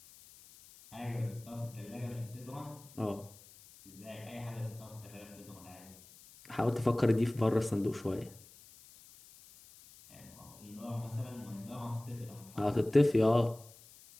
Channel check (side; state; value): left; noise; hiss, 22 dB below the sound